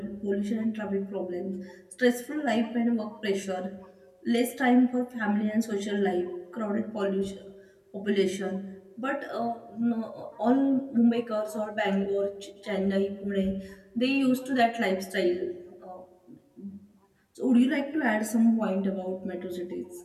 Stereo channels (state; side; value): identical; both; correlation 1.00